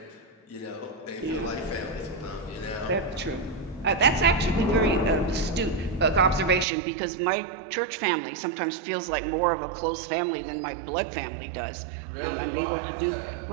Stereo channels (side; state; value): left; drops out; at 6.7 s